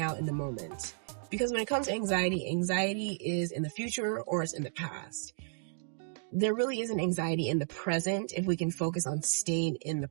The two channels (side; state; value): left; silent; digital silence